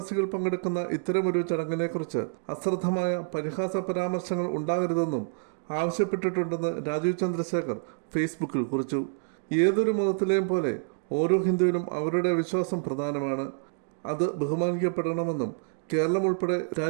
പങ്കെടുക്കുന്ന ഇത്തരമൊരു ചടങ്ങിനെക്കുറിച്ച് അശ്രദ്ധമായ പരിഹാസ പരാമർശങ്ങൾ ഉണ്ടാകരുതെന്നും ആവശ്യപ്പെട്ടിട്ടുണ്ടെന്ന് രാജീവ് ചന്ദ്രശേഖർ ഫേസ്ബുക്കിൽ കുറിച്ചു. ഏതൊരു മതത്തിലെയും പോലെ ഓരോ ഹിന്ദുവിനും അവരുടെ വിശ്വാസം പ്രധാനമാണ്. അത് ബഹുമാനിക്കപ്പെടണമെന്നും കേരളം ഉൾപ്പെടെ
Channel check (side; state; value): left; silent; digital silence